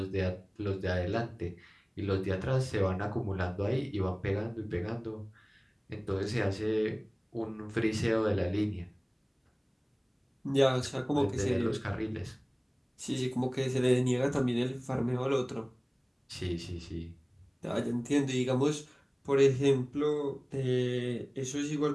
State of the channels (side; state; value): both; identical; correlation 1.00